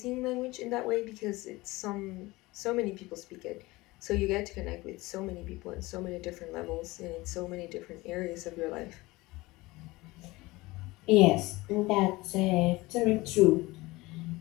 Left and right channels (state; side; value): quieter; right; 20.9 dB